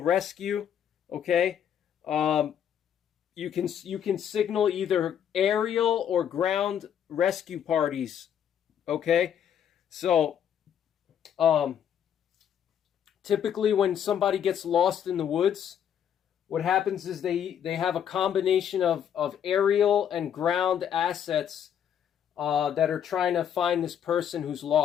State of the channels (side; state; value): right; quieter; 9.1 dB